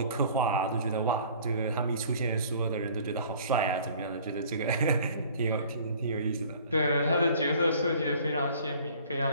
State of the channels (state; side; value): inverted; both; correlation -0.51